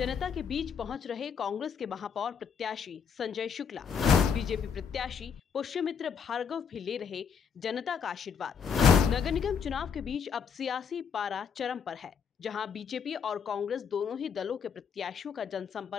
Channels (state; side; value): quieter; right; 6.9 dB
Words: के बीच पहुंच रहे कांग्रेस के महापौर प्रत्याशी संजय शुक्ला, बीजेपी प्रत्याशी पुष्यमित्र भार्गव भी ले रहे जनता का आशीर्वाद। नगर निगम चुनाव के बीच अब सियासी पारा चरम पर है, जहां बीजेपी और कांग्रेस दोनों ही दलों के प्रत्याशियों का